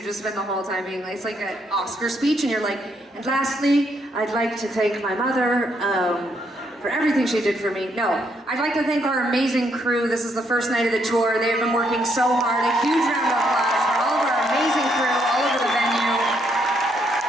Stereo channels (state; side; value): normal; both; correlation 0.74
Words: just spend the whole time being like, it's like an Oscar speech and you're like, and lastly, I'd like to thank my mother for everything she did for me. No, I'd like to thank our amazing crew. This is the first night of the tour. They have been working so hard. A huge round of applause for all of our amazing crew all over the venue.